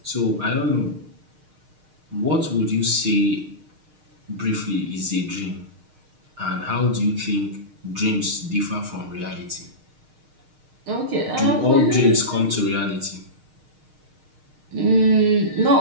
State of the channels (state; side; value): late; left; 6.5 ms